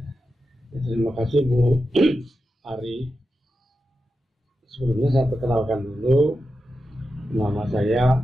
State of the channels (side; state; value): both; normal; correlation 0.90